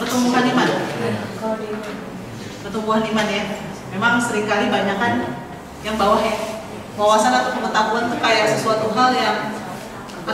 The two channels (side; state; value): both; identical; correlation 1.00